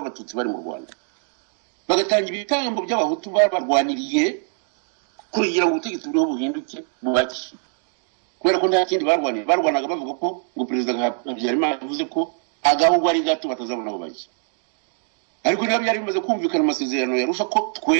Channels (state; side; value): silent; left; 56 dB below the other